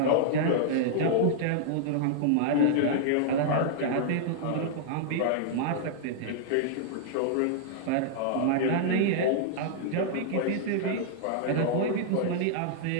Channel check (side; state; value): both; different; correlation -0.01